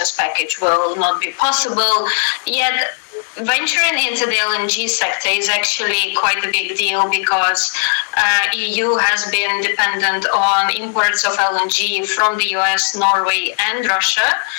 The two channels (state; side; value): silent; right; digital silence